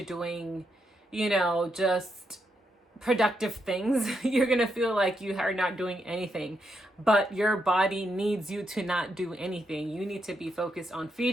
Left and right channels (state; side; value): normal; both; correlation 0.81